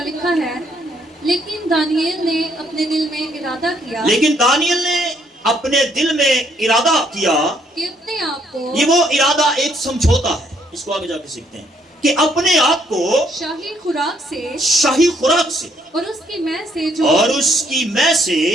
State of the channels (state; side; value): normal; both; correlation 0.69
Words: लिखा है, लेकिन दानियल ने अपने दिल में इरादा किया, लेकिन दानियल ने अपने दिल में इरादा किया कि अपने आप को, ये वो इरादा एक समझौता है, इसको आगे जाके सीखते हैं कि अपने आप को शाही खुराक से, शाही खुराक से और उसकी मैं